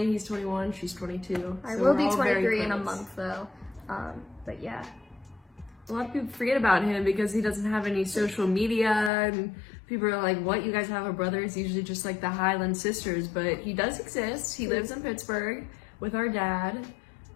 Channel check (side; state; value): right; drops out; at 9.1 s